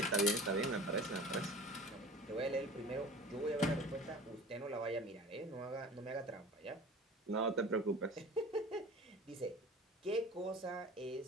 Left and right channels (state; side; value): normal; both; correlation 0.40